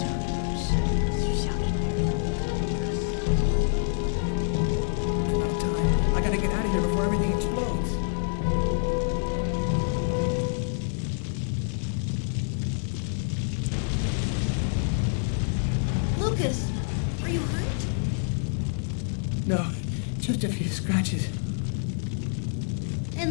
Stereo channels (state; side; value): silent; right; 60 dB below the other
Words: I'm out of time. I gotta get out of here before everything explodes. Lucas, are you hurt? No, just a few scratches.